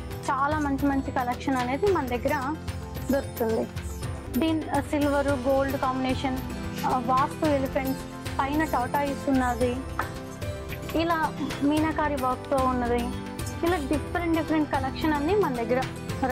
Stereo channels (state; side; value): identical; both; correlation 1.00